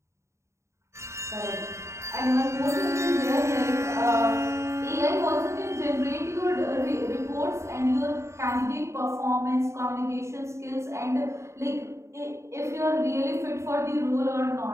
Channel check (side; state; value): left; late; 0.14 ms